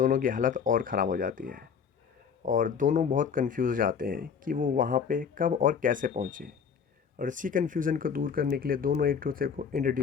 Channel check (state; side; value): quieter; right; 6.7 dB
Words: की हालत और ख़राब हो जाती है और दोनों बहुत कंफ्यूज जाते हैं कि वो वहाँ पे कब और कैसे पहुँचे। और इसी कन्फ्यूज़न को दूर करने के लिए दोनों एक दूसरे को